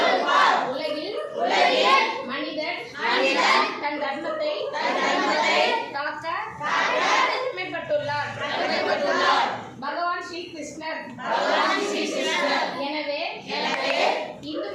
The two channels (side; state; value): both; identical; correlation 1.00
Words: உலகில் மனிதன் தன் தர்மத்தை காக்க கடமைப்பட்டுள்ளார் பகவான் ஸ்ரீ கிருஷ்ணர். எனவே